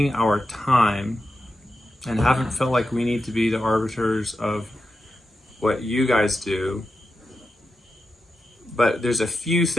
our time and haven't felt like we need to be the arbiters of what you guys do. But there's a few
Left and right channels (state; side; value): normal; both; correlation 0.89